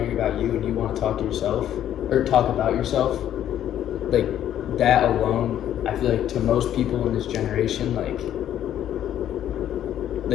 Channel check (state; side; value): quieter; right; 11.1 dB